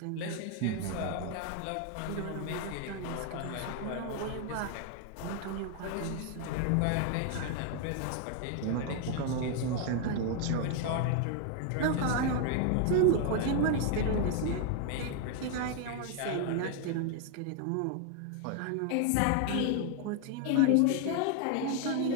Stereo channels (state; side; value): different; both; correlation 0.00